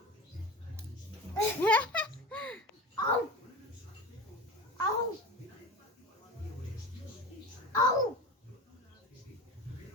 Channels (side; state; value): both; normal; correlation 0.30